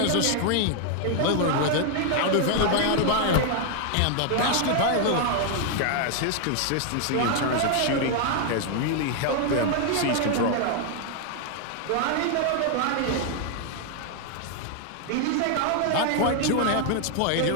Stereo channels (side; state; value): both; different; correlation 0.00